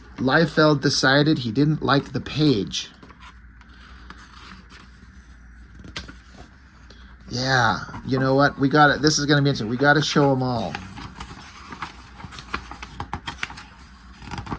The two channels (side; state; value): both; identical; correlation 1.00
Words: Liefeld decided he didn't like the page. Yeah, you know what? We got it. This is going to be interesting. We got to show them all.